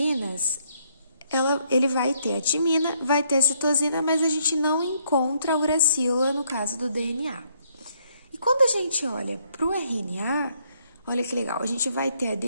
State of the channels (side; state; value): both; inverted; correlation -0.71